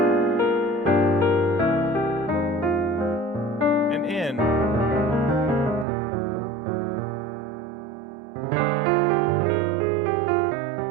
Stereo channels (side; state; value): left; drops out; at 5.9 s